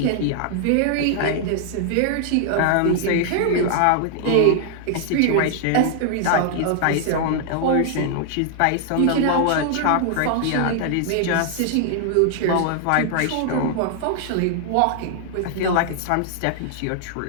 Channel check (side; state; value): both; different; correlation 0.00